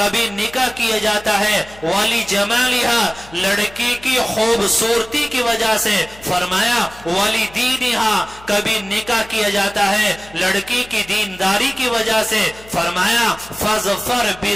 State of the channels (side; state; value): left; noise; hum, 22 dB below the sound